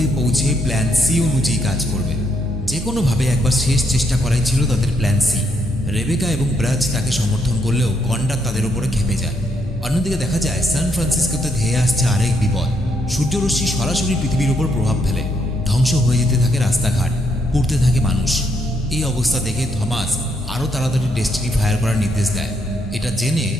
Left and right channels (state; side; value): normal; both; correlation 0.75